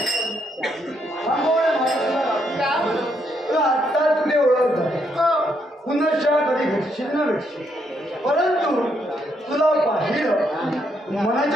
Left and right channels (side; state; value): both; normal; correlation 0.76